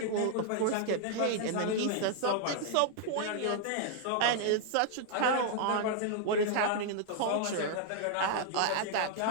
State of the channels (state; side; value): different; both; correlation -0.01